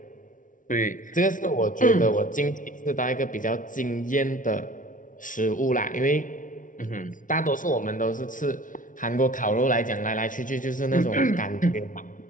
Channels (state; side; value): late; right; 0.38 ms